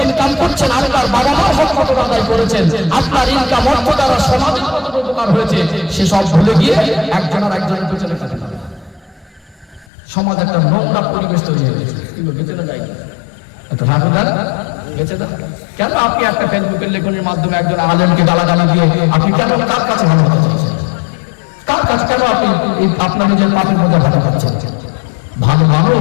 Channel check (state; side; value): drops out; right; at 9.9 s